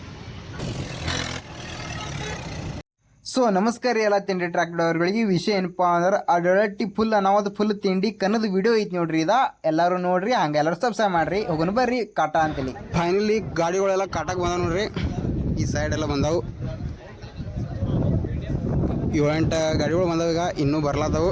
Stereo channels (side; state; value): both; identical; correlation 1.00